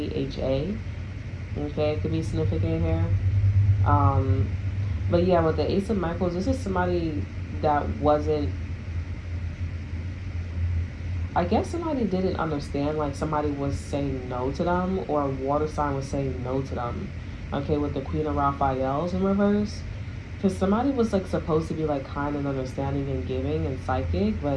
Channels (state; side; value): identical; both; correlation 1.00